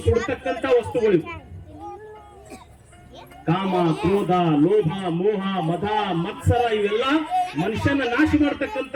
ಸುಡತಕ್ಕಂತ ವಸ್ತುಗಳು. ಕಾಮ, ಕ್ರೋಧ, ಲೋಭ, ಮೋಹ, ಮದ, ಮತ್ಸರ ಇವೆಲ್ಲ ಮನುಷ್ಯನ ನಾಶ ಮಾಡತಕ್ಕಂತ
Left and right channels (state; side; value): identical; both; correlation 1.00